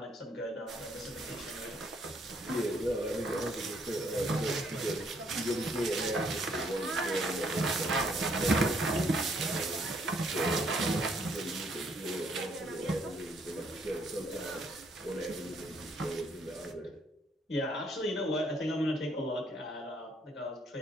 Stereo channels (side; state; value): both; normal; correlation 0.69